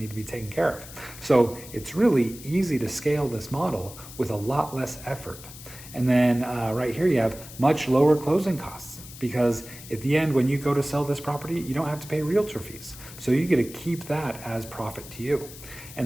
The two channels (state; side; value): noise; left; hiss, 16 dB below the sound